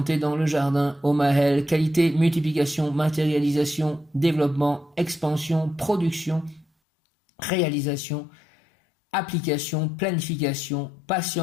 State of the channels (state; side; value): drops out; right; at 6.7 s